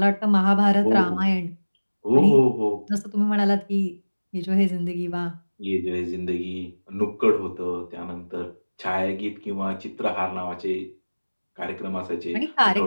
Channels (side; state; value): both; inverted; correlation -1.00